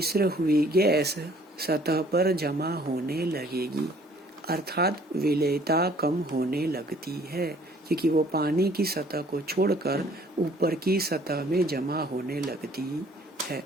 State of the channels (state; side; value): normal; both; correlation 0.58